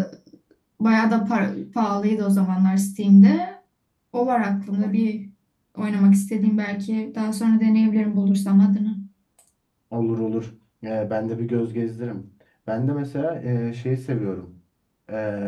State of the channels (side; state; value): both; identical; correlation 1.00